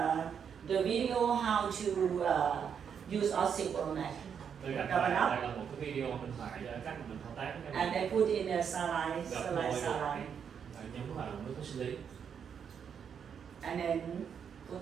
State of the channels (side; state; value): left; quieter; 7.5 dB